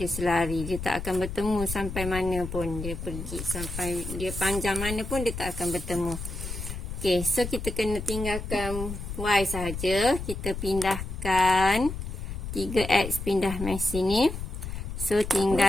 selari. Dia tak akan bertemu sampai mana pun dia pergi. Sampai dia panjang mana pun dia tak akan bertemu. Okey, so kita kena tinggalkan Y sahaja. Kita pindahkan 3X pindah mai sini. So,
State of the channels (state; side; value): noise; left; rumble, 7 dB below the sound